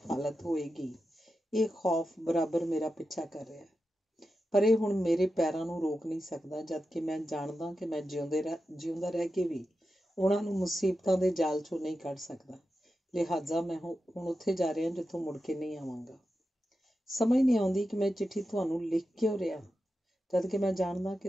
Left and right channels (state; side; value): normal; both; correlation 0.90